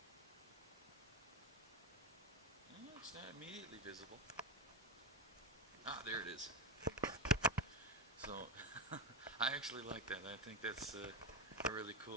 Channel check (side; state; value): both; normal; correlation 0.15